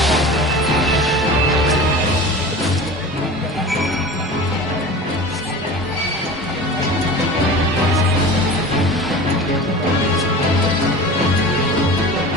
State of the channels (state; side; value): normal; both; correlation 0.35